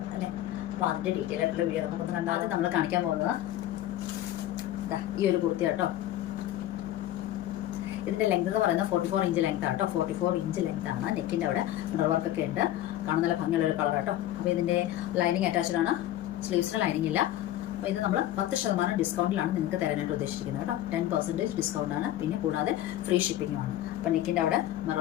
അല്ലേ. അപ്പോൾ അതിന്റെ ഡീറ്റെയിൽ ആയിട്ടുള്ള വീഡിയോ നമുക്കൊന്ന് കണ്ടാൽ നമ്മൾ കാണിക്കാൻ പോകുന്നത് ഈ ഒരു കുർത്തി കേട്ടോ. ഇതിന്റെ ലെങ്ത് എന്ന് പറയുന്നത് 44 ഇഞ്ച് ലെങ്ത് ആട്ടോ. 44 ഇഞ്ച് ലെങ്ത് ആണ്. നെക്കിന്റെ അവിടെ മിറർ വർക്ക് ഒക്കെ ഉണ്ട്. കാണാൻ നല്ല ഭംഗിയുള്ള ഒരു കളർ ആട്ടോ. അപ്പോൾ ഇതിന്റെ ലൈനിങ് അറ്റാച്ച്ഡ് ആണ്. സ്ലീവ്സിന് ലൈനിങ് ഇല്ല. അപ്പോൾ ഇത് നമ്മൾ 10% ഡിസ്കൗണ്ടിലാണ് നിങ്ങൾക്ക് തരാനായിട്ട് ഉദ്ദേശിച്ചിരിക്കുന്നത് കേട്ടോ. 10% ഡിസ്കൗണ്ട് ആണ്. പിന്നെ കൂടാതെ ഫ്രീ ഷിപ്പിംഗും ആണ്. അപ്പോൾ നെക്കിന്റെ അവിടെ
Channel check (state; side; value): quieter; right; 13.4 dB